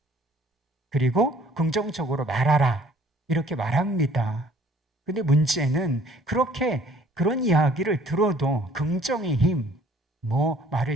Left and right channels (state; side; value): normal; both; correlation 0.57